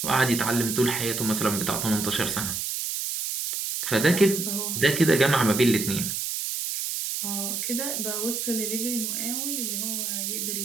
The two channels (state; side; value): noise; right; hiss, 2 dB below the sound